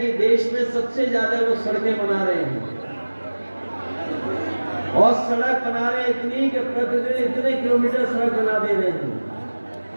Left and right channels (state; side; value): inverted; both; correlation -1.00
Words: देश में सबसे ज्यादा वो सड़कें बना रहे हैं और सड़क बना रहे इतनी कि प्रतिदिन इतने किलोमीटर सड़क बना दे रहे हैं।